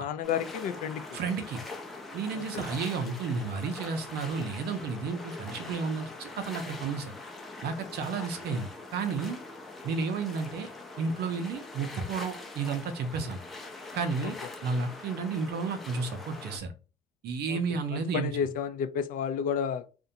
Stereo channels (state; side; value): normal; both; correlation 0.37